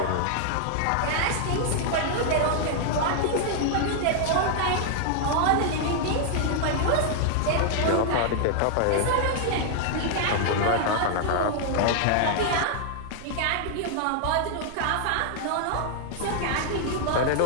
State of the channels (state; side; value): different; both; correlation -0.01